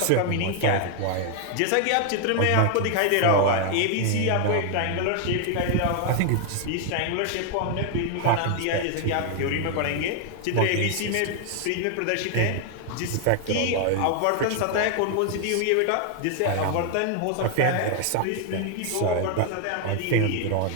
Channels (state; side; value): different; both; correlation 0.00